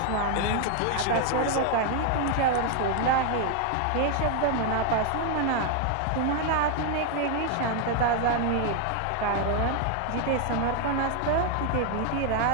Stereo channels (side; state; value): both; different; correlation 0.01